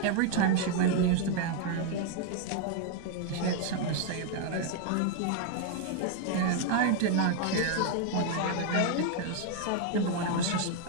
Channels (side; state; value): both; different; correlation 0.01